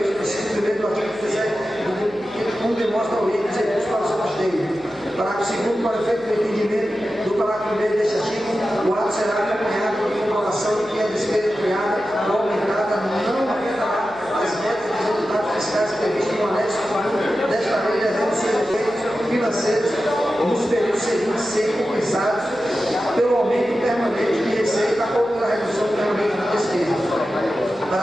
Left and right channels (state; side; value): noise; left; hum, 27 dB below the sound